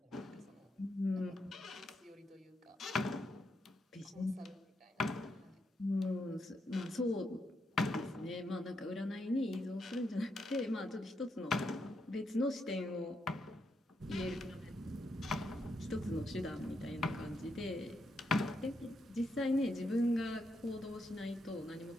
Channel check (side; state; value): both; normal; correlation 0.81